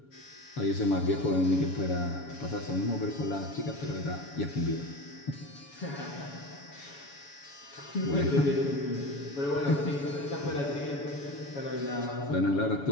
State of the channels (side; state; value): right; late; 7.1 ms